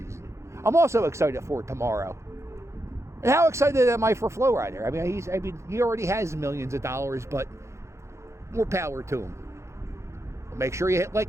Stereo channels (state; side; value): late; left; 0.14 ms